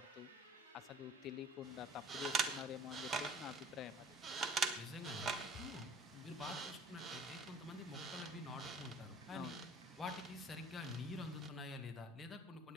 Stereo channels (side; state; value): both; normal; correlation 0.50